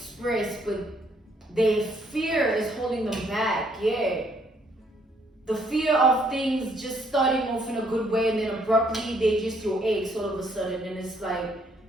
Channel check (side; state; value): both; normal; correlation 0.68